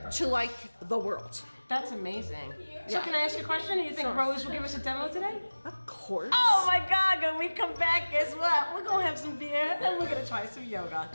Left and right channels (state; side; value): inverted; both; correlation -1.00